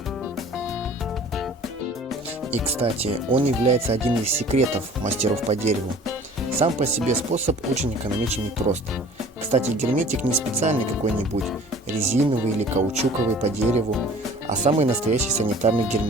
И, кстати, он является одним из секретов мастеров по дереву. Сам по себе способ очень экономичен и прост. Кстати, герметик не специальный какой-нибудь, резиновый или каучуковый по дереву, а самый настоящий санитарный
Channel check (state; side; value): normal; both; correlation 0.48